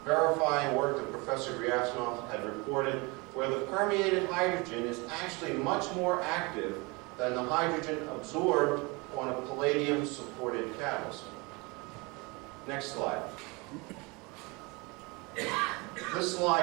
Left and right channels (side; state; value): left; quieter; 27.0 dB